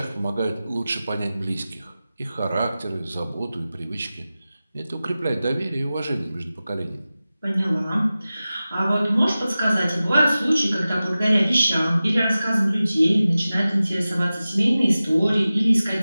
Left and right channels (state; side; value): inverted; both; correlation -0.96